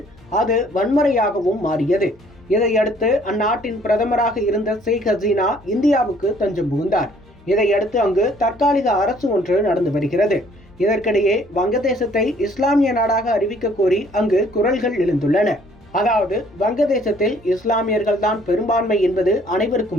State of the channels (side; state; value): left; noise; hum, 28 dB below the sound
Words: அது வன்முறையாகவும் மாறியது. இதையடுத்து அந்நாட்டின் பிரதமராக இருந்த ஷேக் ஹசீனா இந்தியாவுக்கு தஞ்சம் புகுந்தார். இதையடுத்து அங்கு தற்காலிக அரசு ஒன்று நடந்து வருகிறது. இதற்கிடையே வங்கதேசத்தை இஸ்லாமிய நாடாக அறிவிக்க கோரி அங்கு குரல்கள் எழுந்துள்ளன. அதாவது வங்கதேசத்தில் இஸ்லாமியர்கள் தான் பெரும்பான்மை என்பது